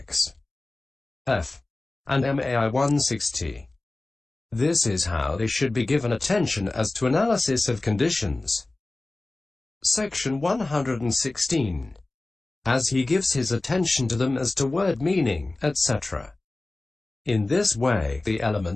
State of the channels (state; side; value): quieter; right; 3.0 dB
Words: F. and MAI 160. This is how they should be given attention as to analysis of conditions. Section 116. As he gives his attention to them as to word meaning, etc. In this way, the